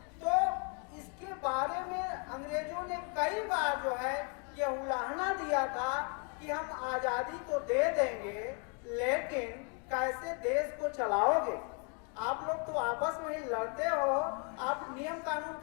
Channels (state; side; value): quieter; right; 37.8 dB